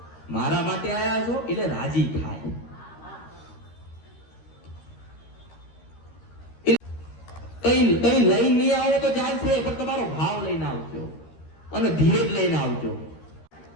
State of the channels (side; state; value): right; late; 13 ms